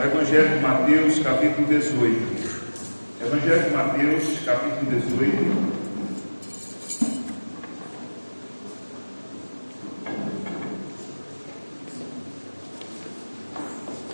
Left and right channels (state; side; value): inverted; both; correlation -1.00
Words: Evangelho de Mateus, capítulo 18. Evangelho de Mateus, capítulo 18.